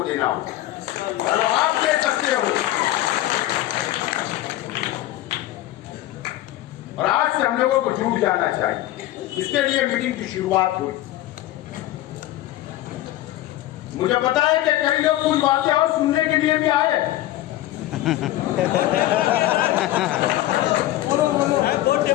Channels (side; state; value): right; quieter; 15.1 dB